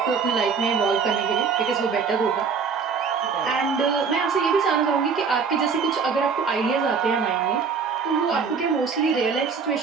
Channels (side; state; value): left; quieter; 5.6 dB